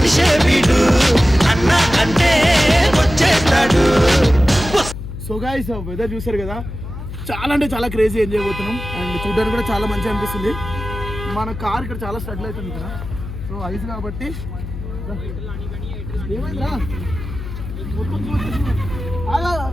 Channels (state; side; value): noise; left; hum, 9 dB below the sound